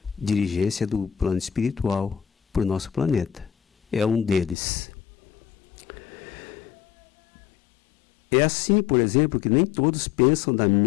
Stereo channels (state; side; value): drops out; right; at 4.5 s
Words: dirigência do plano espiritual para o nosso planeta. É um deles. É assim, por exemplo, que nem todos pensam da